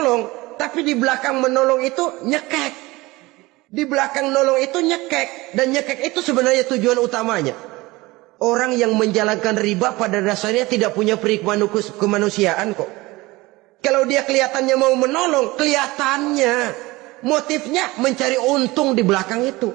Tapi di belakang menolong itu nyekek. Di belakang nolong itu nyekek. Dan nyekek itu sebenarnya tujuan utamanya. Orang yang menjalankan riba pada dasarnya tidak punya kemanusiaan kok. Kalau dia kelihatannya mau menolong, kelihatannya motifnya mencari untung di belakang itu.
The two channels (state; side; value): quieter; left; 21.1 dB